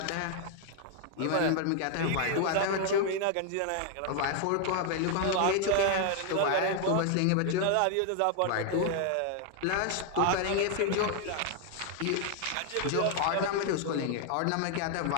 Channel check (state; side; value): different; both; correlation 0.00